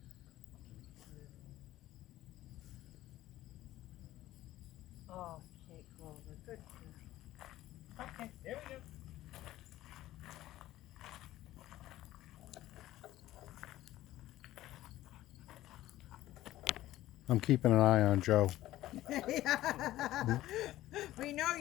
Okay, Clover. Good girl. Okay, there we go. I'm keeping an eye on Joe. We know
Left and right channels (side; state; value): right; quieter; 15.1 dB